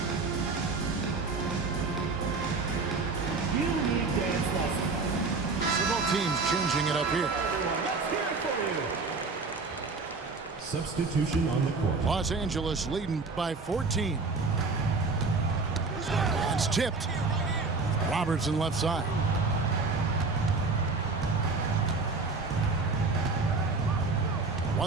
Teams changing it up here. Substitution on the court. Los Angeles leading by 14. It's tipped. Robertson left side.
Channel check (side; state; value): left; quieter; 4.1 dB